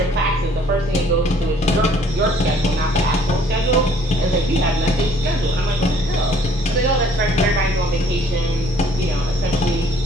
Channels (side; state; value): both; normal; correlation 0.59